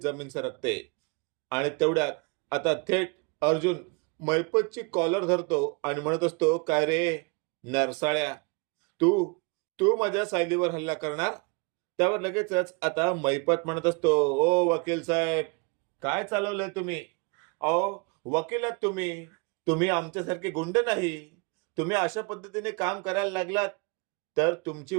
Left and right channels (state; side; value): quieter; left; 30.7 dB